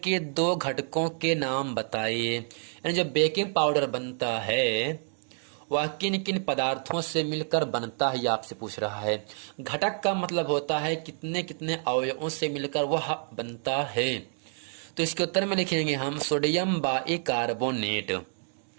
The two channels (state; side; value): silent; left; 59 dB below the other